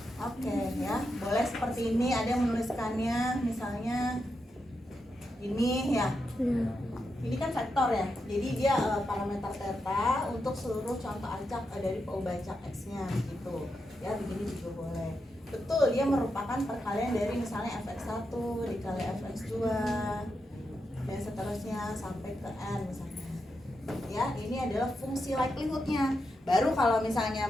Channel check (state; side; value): normal; both; correlation 0.85